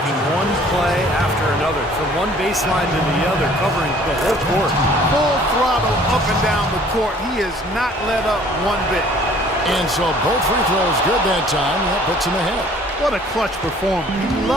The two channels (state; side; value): normal; both; correlation 0.54